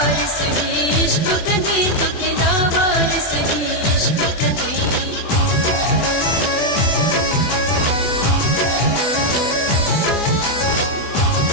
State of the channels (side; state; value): right; late; 24 ms